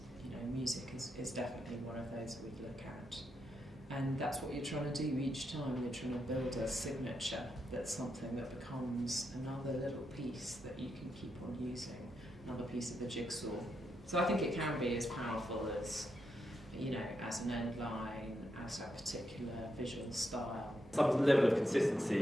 music is definitely one of those that we look at. And that's what you're trying to do each time. You're trying to build a signature that's something that becomes another little piece that you can keep on using, another piece of the jigsaw. So I think it can be as powerful as, as an end line, as a particular visual style. Some level of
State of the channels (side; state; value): both; normal; correlation 0.83